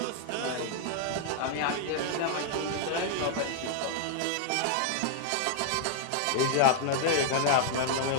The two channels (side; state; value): both; different; correlation -0.01